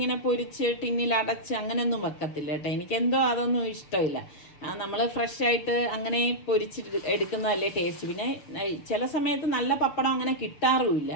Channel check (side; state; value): right; late; 6.7 ms